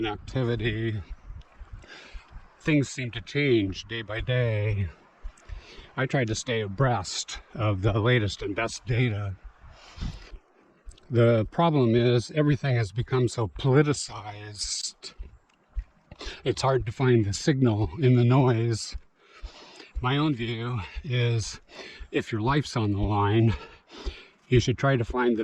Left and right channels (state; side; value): identical; both; correlation 1.00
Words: activity. Things seem to change day by day. I try to stay abreast of the latest and best data. The problem is everything has become so politicized. It's hard to find the signal in the noise. My own view is if your life's on the line, you should try to find